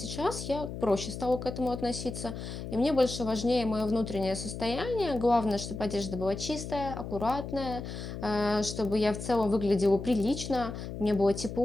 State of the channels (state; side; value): noise; left; hum, 8 dB below the sound